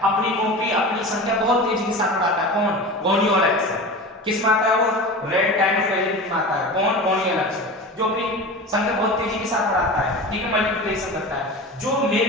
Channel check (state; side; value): normal; both; correlation 0.31